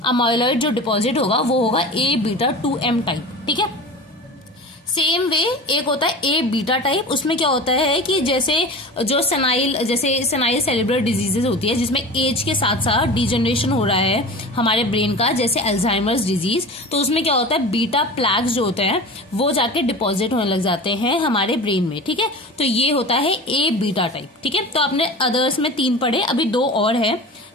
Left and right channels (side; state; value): both; normal; correlation 0.34